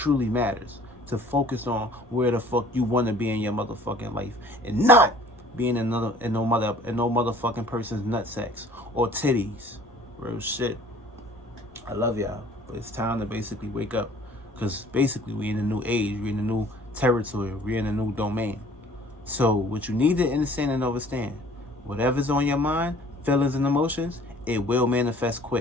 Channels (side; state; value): both; normal; correlation 0.52